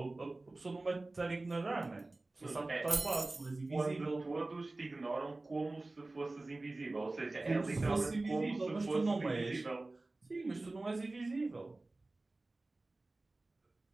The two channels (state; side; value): quieter; left; 3.0 dB